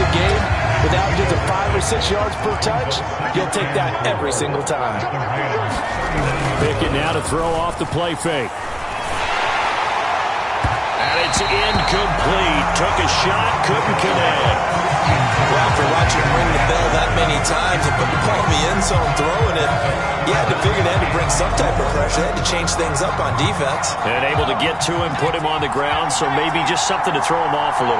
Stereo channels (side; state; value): both; identical; correlation 1.00